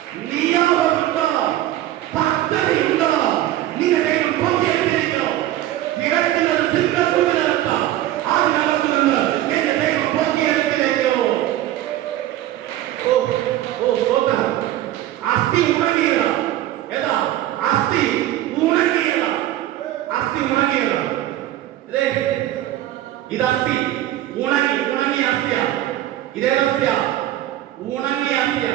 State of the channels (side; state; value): left; quieter; 13.8 dB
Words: നിയോഗമുണ്ടോ? പദ്ധതിയുണ്ടോ? നിന്റെ ദൈവം പൊട്ടിയെടുത്തിരിക്കോ? ഇടയ്ക്കുന്നത് സിംഹക്കൂട്ടിനകത്ത്, അതിനകത്ത് നിന്ന് എന്റെ ദൈവം പൊട്ടിയെടുത്തിരിക്കോ? അസ്ഥി ഉണങ്ങിയതാ. ഏതാ അസ്ഥി? ഉണങ്ങിയതാ. അസ്ഥി ഉണങ്ങിയതാ. ഇത് അസ്ഥി ഉണങ്ങിയ അസ്ഥിയാ. ഇതേത് അസ്ഥിയാ? ഉണങ്ങിയ അസ്ഥിയാ.